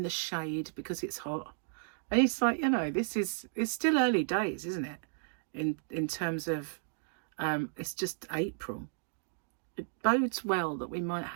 the shade because it's hot. And it's like, you know, it's still early days, isn't it? In terms of, it's just April. It bodes well that we might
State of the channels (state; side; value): silent; left; digital silence